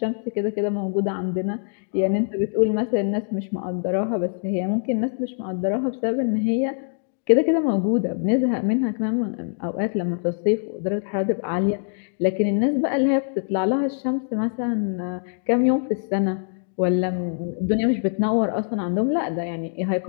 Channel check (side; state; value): right; silent; digital silence